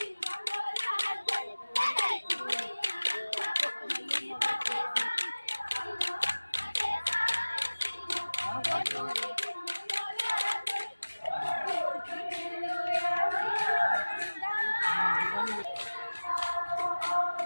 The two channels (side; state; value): both; inverted; correlation -1.00